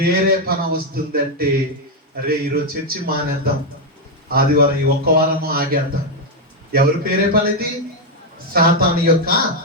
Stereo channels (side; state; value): both; normal; correlation 0.02